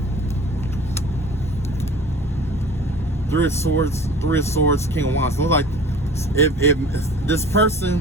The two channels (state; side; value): noise; left; hum, 14 dB below the sound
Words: 3 of Swords, King of Wands. Look like if this